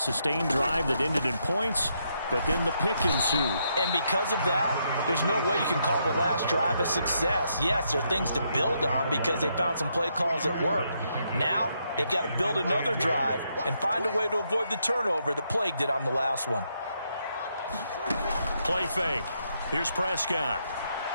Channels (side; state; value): both; inverted; correlation -0.77